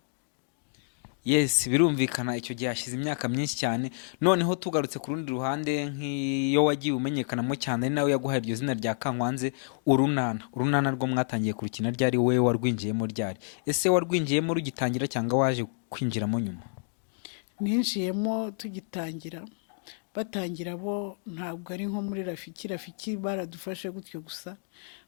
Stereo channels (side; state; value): right; silent; 59 dB below the other